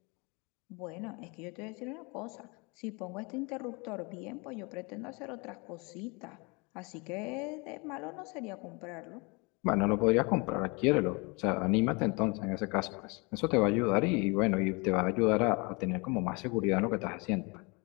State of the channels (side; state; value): right; quieter; 29.2 dB